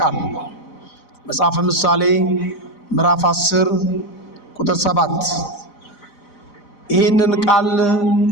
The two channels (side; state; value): right; late; 4.0 ms